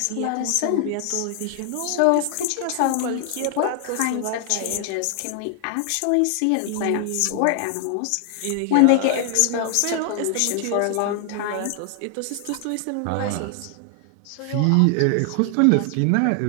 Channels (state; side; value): different; both; correlation 0.00